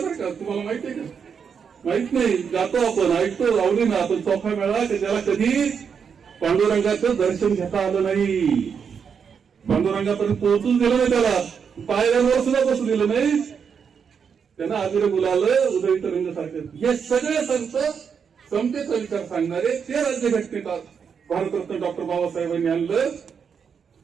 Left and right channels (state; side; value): quieter; left; 6.7 dB